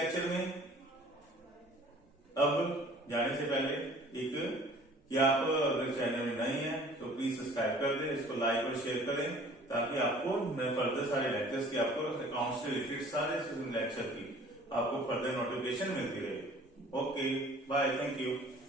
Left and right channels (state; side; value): normal; both; correlation 0.51